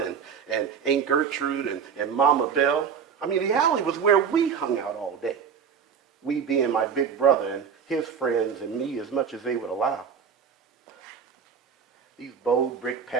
and Aunt Gertrude and Mama Bell. I mean, the alley was where we hung out all day. We being my big brother and his friends and me as much as they would allow. These bold brick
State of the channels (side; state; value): left; quieter; 7.0 dB